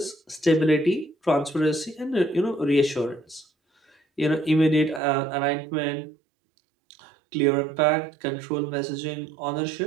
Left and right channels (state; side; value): drops out; left; at 5.0 s